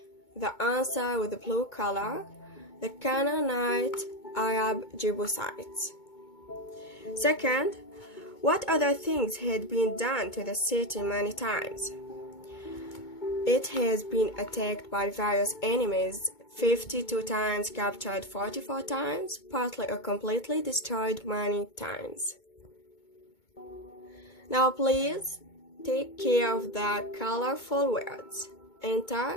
The answer with the blue color, the Canaanite Arab Jebusites. Second, what other things had been done to the city many times? It has been attacked by various enemies 52 times, captured 44 times, partly or completely destroyed many times. Now please take care of the colorful words. Enter,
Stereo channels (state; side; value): late; right; 2.2 ms